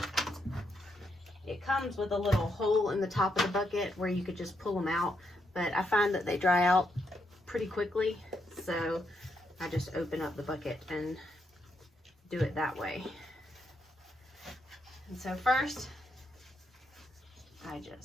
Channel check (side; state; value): both; normal; correlation 0.79